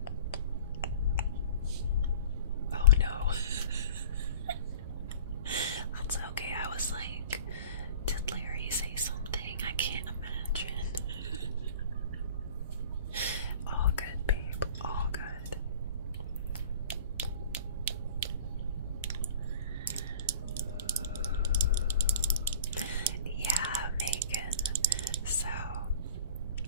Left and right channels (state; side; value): inverted; both; correlation -0.44